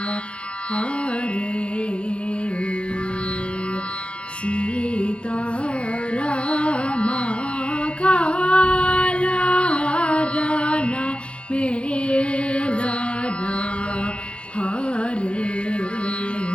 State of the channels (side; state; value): right; late; 0.059 ms